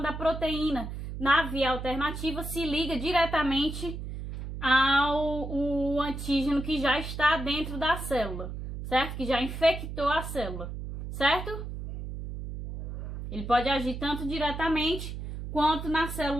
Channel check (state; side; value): noise; right; hum, 7 dB below the sound